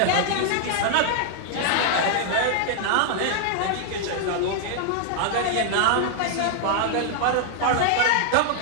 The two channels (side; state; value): both; different; correlation 0.00